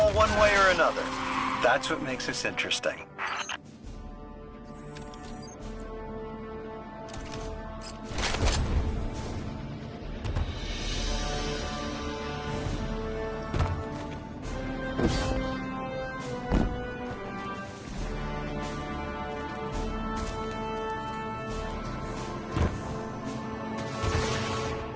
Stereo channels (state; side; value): identical; both; correlation 1.00